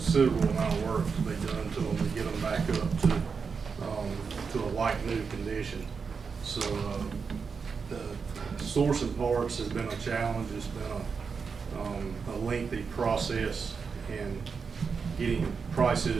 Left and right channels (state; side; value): quieter; left; 5.5 dB